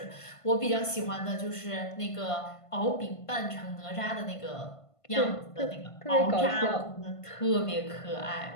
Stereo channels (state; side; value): late; right; 1.5 ms